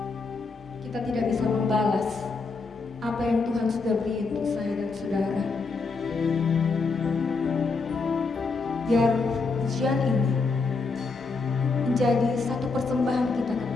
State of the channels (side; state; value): right; quieter; 4.2 dB